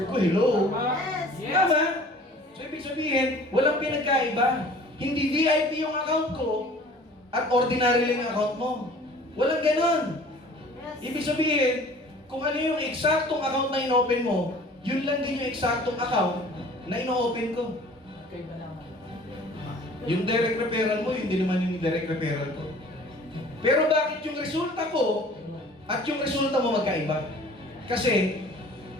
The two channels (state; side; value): normal; both; correlation 0.48